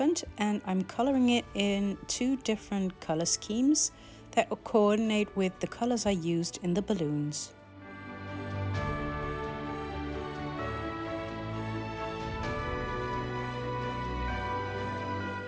and I'm coloring it in 2 different color schemes that will coordinate with the colors I used in the balloons.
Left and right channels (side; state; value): both; identical; correlation 1.00